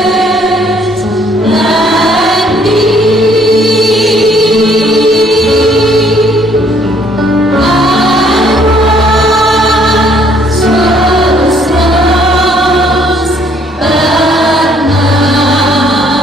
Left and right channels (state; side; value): normal; both; correlation 0.64